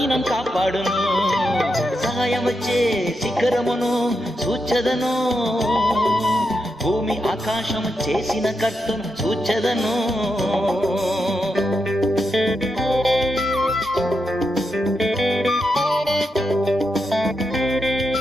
కాపాడును. సహాయం వచ్చే శిఖరమును చూచెదను, భూమి ఆకాశము చేసిన కర్తను చూచెదను.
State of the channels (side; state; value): both; normal; correlation 0.85